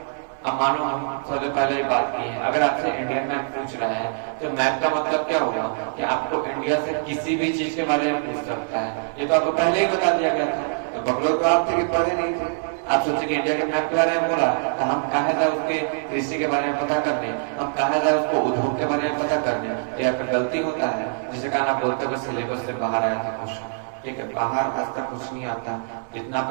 अब मानो हम सबसे पहले ही बात की है, अगर आपसे इंडियन मैप पूछ रहा है तो मैप का मतलब क्या होगा कि आपको इंडिया से किसी भी चीज के बारे में पूछ सकता है। ये तो आपको पहले ही बता दिया गया था। तो बकलोग तो आप थे कि पढ़े नहीं थे, आप सोचे कि इंडिया के मैप के बारे में बोला तो हम कहा जाए उसके कृषि के बारे में पता करने, हम कहा जाए उसको उद्योग के बारे में पता करने। ये आपका गलती होता है, जिसे कारण आप बोलते हो सिलेबस से बाहर आया था क्वेश्चन। ठीक है, बाहर आज तक कुछ नहीं आता जितना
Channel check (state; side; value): silent; left; digital silence